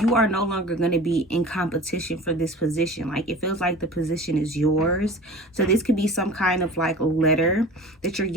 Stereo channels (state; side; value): normal; both; correlation 0.39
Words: are no longer going to be in competition for this position. Like it feels like the position is yours. So this could be some kind of like letter that you're